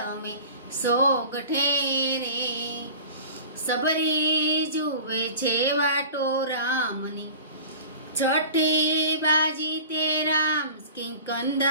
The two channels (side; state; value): both; inverted; correlation -0.40